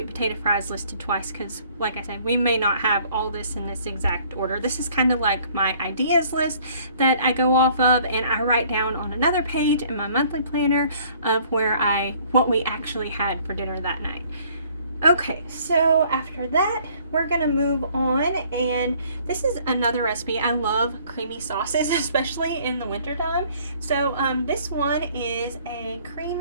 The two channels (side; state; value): both; inverted; correlation -0.58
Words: potato fries listed twice, because like I said, we may not have all this in this exact order. This is kind of like my ideas list that I go off of, and I write down on another page in my monthly planner of what we actually had for dinner that night. Okay, so after that, we're gonna move on, and this is another recipe. I love creamy sauces, especially in the wintertime. So this one is a